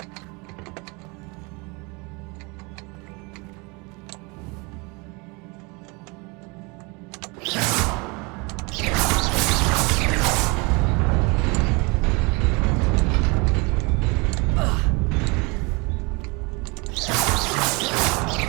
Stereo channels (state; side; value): quieter; left; 28.4 dB